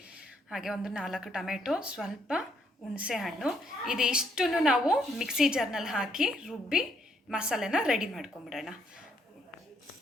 ಹಾಗೆ ಒಂದು 4 ಟೊಮೆಟೊ, ಸ್ವಲ್ಪ ಹುಣಸೆ ಹಣ್ಣು. ಇದಿಷ್ಟನ್ನು ನಾವು ಮಿಕ್ಸಿ ಜಾರ್ನಲ್ಲಿ ಹಾಕಿ ರುಬ್ಬಿ ಮಸಾಲೆನ ರೆಡಿ ಮಾಡ್ಕೊಂಬಿಡೋಣ.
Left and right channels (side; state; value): both; normal; correlation 0.72